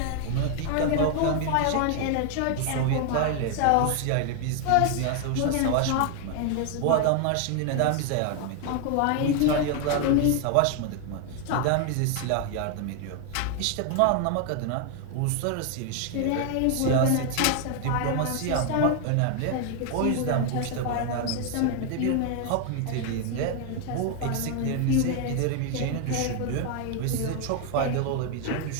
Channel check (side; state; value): both; different; correlation 0.00